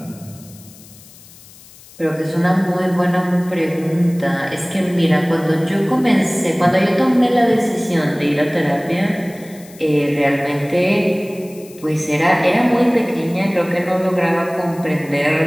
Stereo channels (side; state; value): left; noise; hiss, 22 dB below the sound